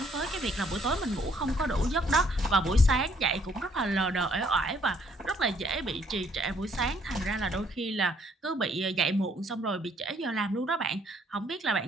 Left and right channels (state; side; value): normal; both; correlation 0.66